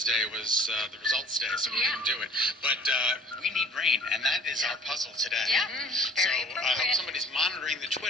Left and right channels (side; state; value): both; normal; correlation 0.50